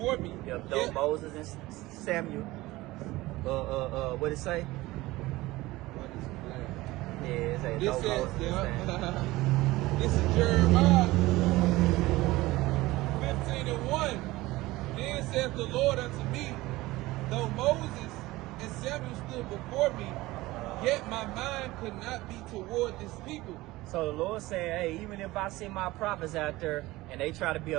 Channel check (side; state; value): left; quieter; 19.0 dB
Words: me. Yep, though Moses and Samuel. What it say? Yeah, it say This though says, Moses and Samuel. This is Jeremiah 15 and 1. Then saith the Lord unto me, though Moses and Samuel stood before me, yet my mind could not be toward this people. So the Lord said, hey, even if I send my prophets out there and they try to be